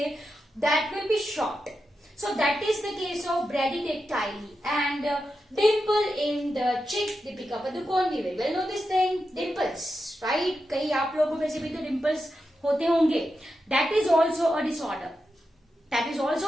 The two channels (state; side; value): normal; both; correlation 0.88